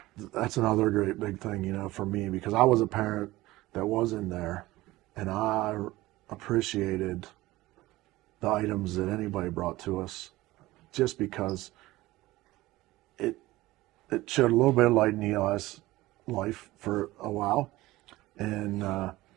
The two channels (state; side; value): quieter; left; 18.3 dB